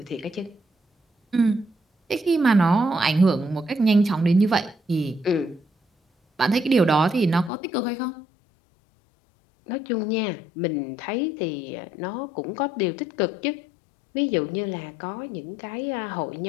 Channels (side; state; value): right; drops out; at 7.5 s